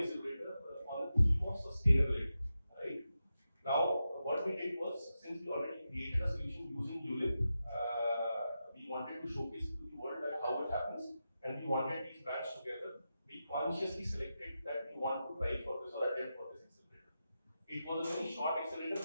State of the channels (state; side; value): inverted; both; correlation -0.90